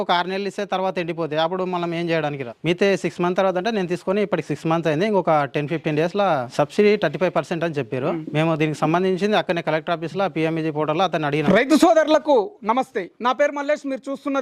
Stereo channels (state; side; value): identical; both; correlation 1.00